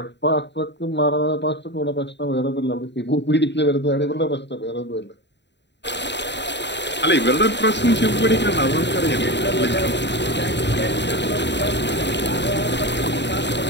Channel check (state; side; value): late; right; 0.51 ms